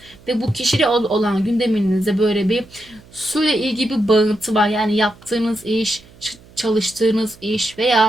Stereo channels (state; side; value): noise; right; hum, 25 dB below the sound